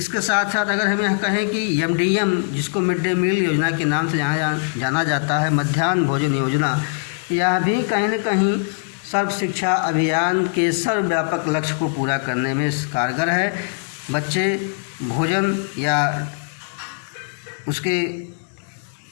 साथ साथ अगर हम यह कहें कि MDM, जिसको मिड डे मील योजना के नाम से जाना जाता है, मध्याह्न भोजन योजना, यह भी कहीं न कहीं सर्व शिक्षा अभियान के सर्वव्यापक लक्ष्य को पूरा करने में कारगर है। बच्चे भोजन या उसके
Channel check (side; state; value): right; silent; digital silence